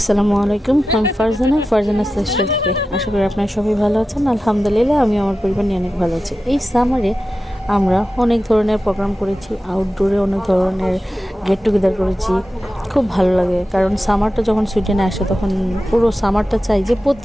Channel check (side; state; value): both; normal; correlation 0.93